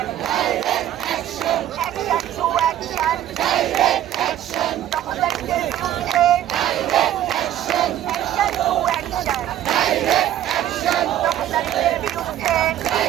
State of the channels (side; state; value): left; quieter; 12.0 dB